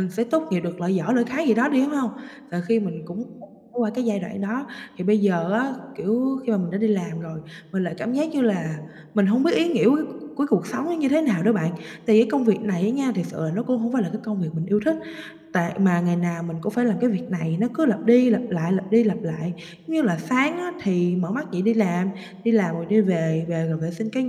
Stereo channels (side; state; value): both; identical; correlation 1.00